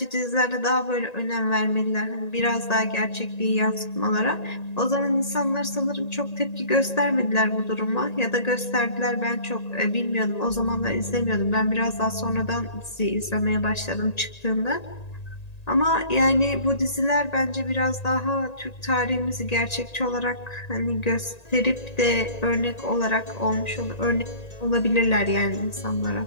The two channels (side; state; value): right; late; 1.9 ms